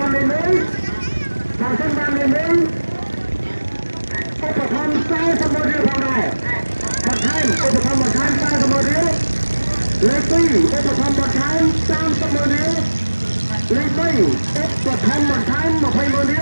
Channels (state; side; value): inverted; both; correlation -1.00